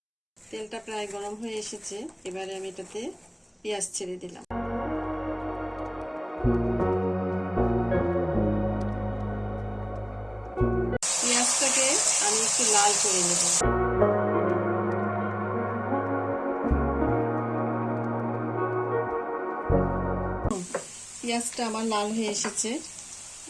তেলটা প্রায় গরম হয়ে এসেছে, এবারে আমি এটাতে পেঁয়াজ ছেড়ে দিলাম। পেঁয়াজটাকে আমি একটু লাল করে নেব। পেঁয়াজটা আমার লাল হয়ে এসেছে,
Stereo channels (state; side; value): identical; both; correlation 1.00